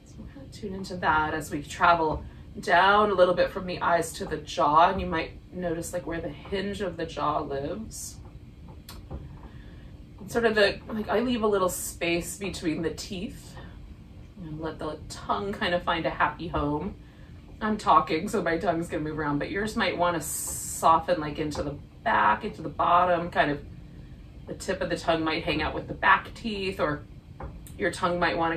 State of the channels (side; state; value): both; identical; correlation 1.00